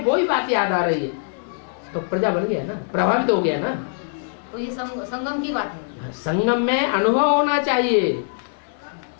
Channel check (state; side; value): silent; right; digital silence